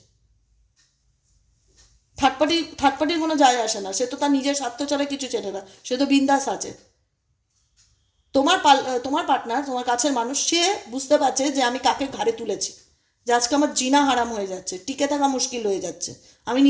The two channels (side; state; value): both; identical; correlation 1.00